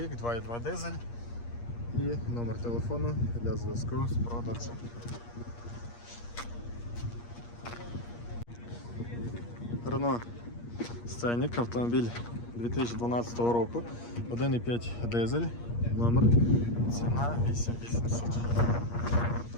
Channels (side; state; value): right; late; 8.5 ms